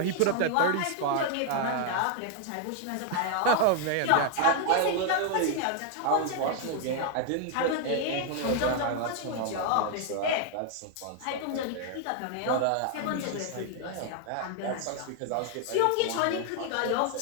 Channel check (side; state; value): both; different; correlation 0.00